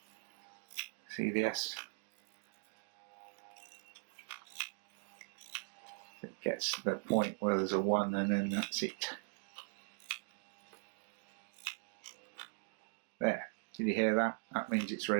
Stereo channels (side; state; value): left; silent; 51 dB below the other